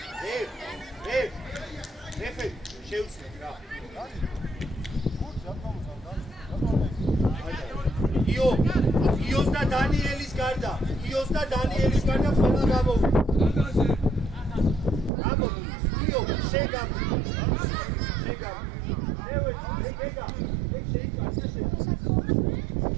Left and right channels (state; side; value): drops out; left; at 15.1 s